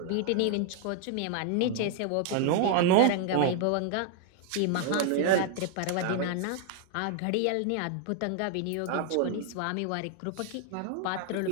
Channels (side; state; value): both; different; correlation 0.00